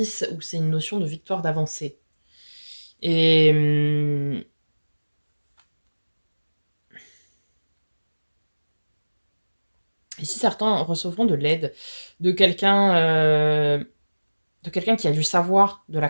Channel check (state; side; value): inverted; both; correlation -1.00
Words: où c'est une notion de victoire d'avancée. Et ici, certains recevront de l'aide de quelqu'un qui a du savoir, de la